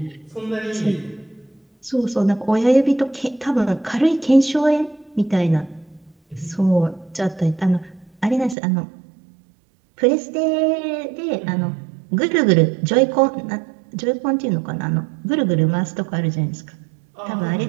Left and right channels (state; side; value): drops out; left; at 8.6 s